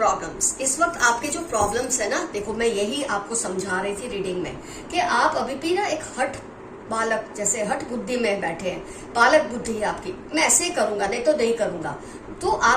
इस वक्त आपके जो प्रॉब्लम्स है ना, देखो मैं यही आपको समझा रही थी रीडिंग में कि आप अभी भी ना एक हठ बालक जैसे हठ बुद्धि में बैठे हैं, बालक बुद्धि है आपकी, मैं ऐसे ही करूंगा नहीं तो नहीं करूंगा, तो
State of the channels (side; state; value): both; identical; correlation 1.00